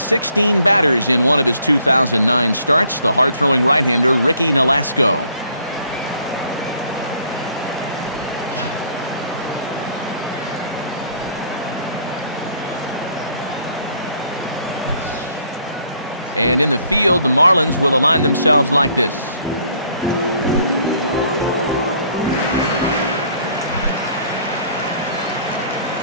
batters in one of his 2009 starts, the hard-throwing right-hander Ricky Nolasco. And in the field, the Marlins will align themselves like this.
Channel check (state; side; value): inverted; both; correlation -0.62